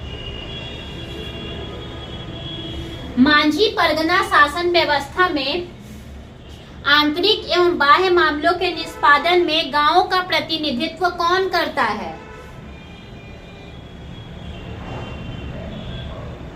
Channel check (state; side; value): identical; both; correlation 1.00